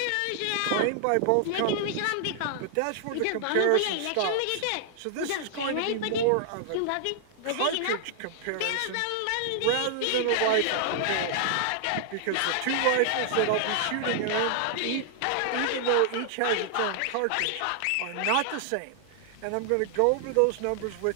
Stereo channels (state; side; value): different; both; correlation -0.01